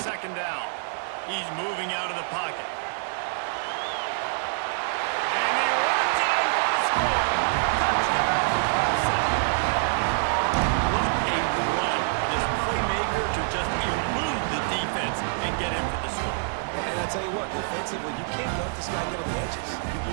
down. He's moving out of the pocket. And he runs it in for the score. Touchdown, Clemson. What a run for this playmaker to just elude the defense and get in for the score. And I tell you what, defensively, you can't let this guy get on the edges. You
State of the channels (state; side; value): silent; left; 61 dB below the other